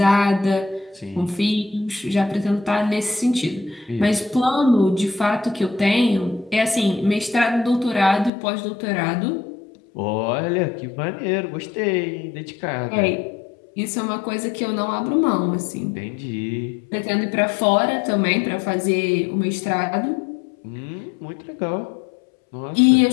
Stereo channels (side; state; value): right; drops out; at 8.3 s